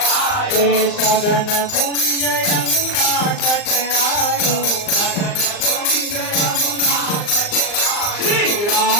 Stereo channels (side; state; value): right; late; 39 ms